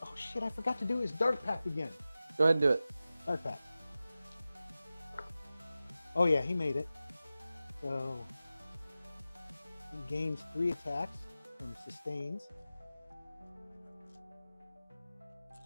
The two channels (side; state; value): both; inverted; correlation -0.94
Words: Oh shit, I forgot to do his Dark Pact again. Go ahead and do it. Dark Pact. Oh yeah, he made it. So he gains 3 attacks from sustains.